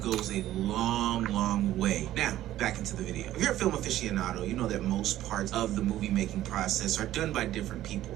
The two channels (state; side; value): quieter; left; 13.7 dB